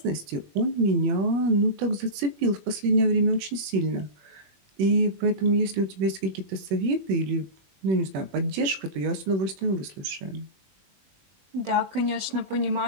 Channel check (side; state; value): left; late; 21 ms